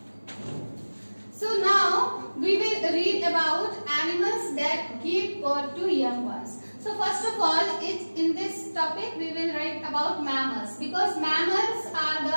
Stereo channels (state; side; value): inverted; both; correlation -1.00